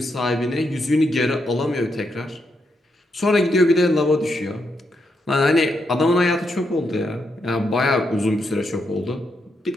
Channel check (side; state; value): both; normal; correlation 0.81